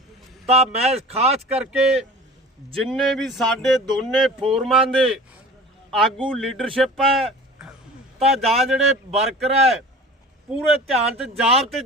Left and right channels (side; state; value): both; normal; correlation 0.40